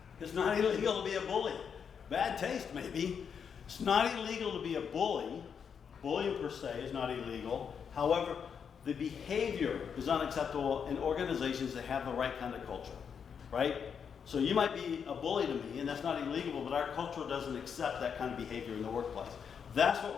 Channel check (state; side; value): quieter; right; 7.0 dB